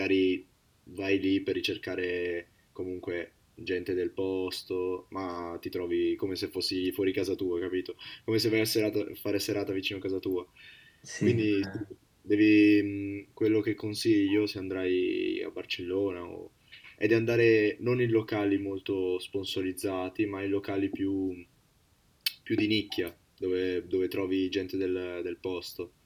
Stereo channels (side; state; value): both; identical; correlation 1.00